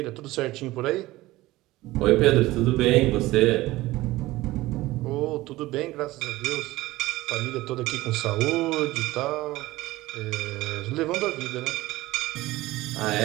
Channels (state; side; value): quieter; left; 18.2 dB